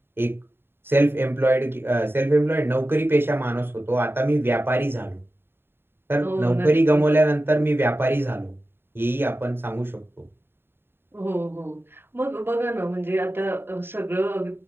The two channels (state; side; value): late; left; 0.11 ms